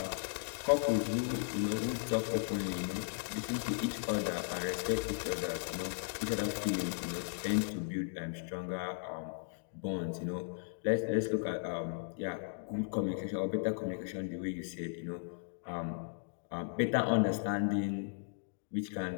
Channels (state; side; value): silent; right; digital silence